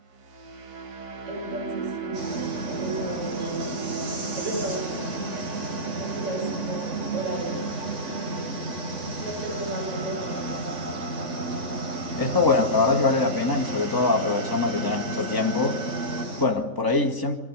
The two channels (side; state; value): left; late; 3.5 ms